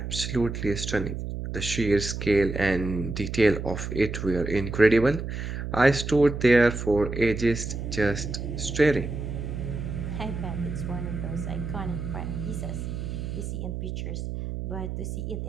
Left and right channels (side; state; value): right; noise; hum, 5 dB below the sound